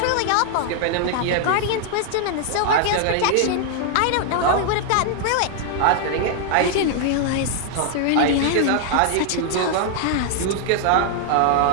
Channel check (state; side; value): different; both; correlation 0.00